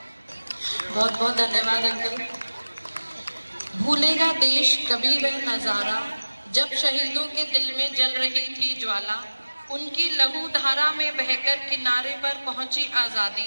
बहुत बहुत धन्यवाद अंकल। भूलेगा देश कभी वह नजारा, जब शहीदों के दिल में जल रही थी ज्वाला, उनकी लहू धारा में बहकर किनारे पर पहुंची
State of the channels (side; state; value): both; inverted; correlation -1.00